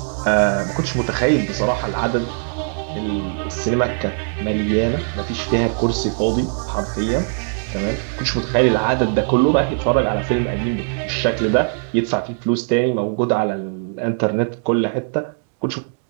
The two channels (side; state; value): left; silent; 65 dB below the other